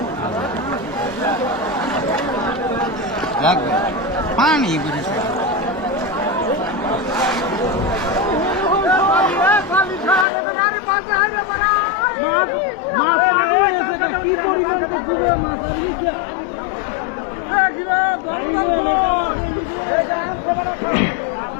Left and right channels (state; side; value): drops out; right; at 10.2 s